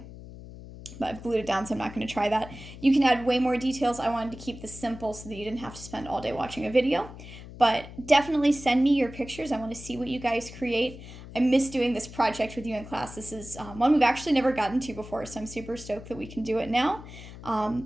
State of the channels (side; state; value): left; noise; hum, 15 dB below the sound